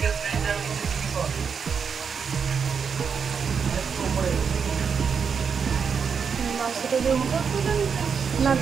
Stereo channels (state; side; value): quieter; left; 6.3 dB